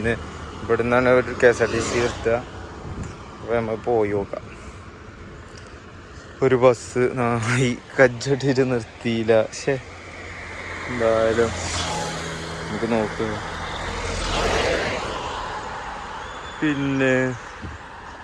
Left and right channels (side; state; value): both; identical; correlation 1.00